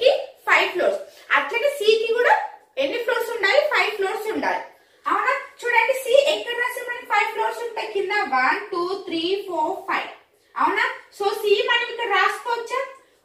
కి 5 ఫ్లోర్స్. అట్లనే C కి కూడా ఎన్ని ఫ్లోర్స్ ఉండాలి, 5 ఫ్లోర్స్ ఉండాలి. అవునా? చూడండి C ఎక్కడ రాసి మనకి 5 ఫ్లోర్స్ ఉంటాయి, కింద 1 2 3 4 5. అవునా? సో C మనం ఇక్కడ రాసుకోవచ్చా?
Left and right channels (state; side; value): identical; both; correlation 1.00